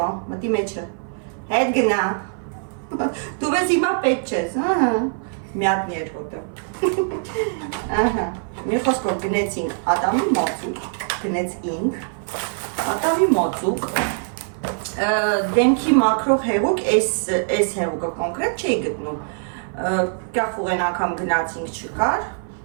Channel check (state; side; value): silent; left; 56 dB below the other